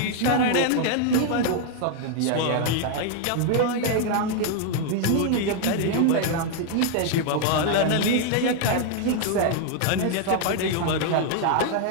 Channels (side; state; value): both; different; correlation 0.00